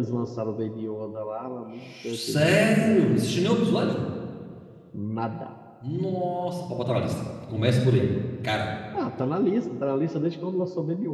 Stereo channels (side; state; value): both; identical; correlation 1.00